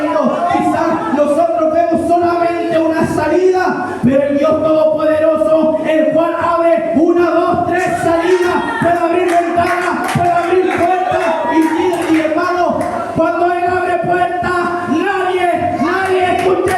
Quizás nosotros vemos solamente una salida, pero el Dios Todopoderoso, el cual abre 1, 2, 3 salidas, puede abrir ventanas, puede abrir puertas, y hermano, cuando Él abre puertas, nadie,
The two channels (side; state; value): both; identical; correlation 1.00